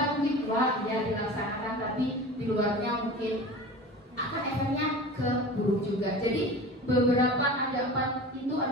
mungkin wah ya dilaksanakan, tapi di luarnya mungkin akan efeknya ke buruk juga. Jadi beberapa ada 4 itu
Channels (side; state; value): both; normal; correlation 0.35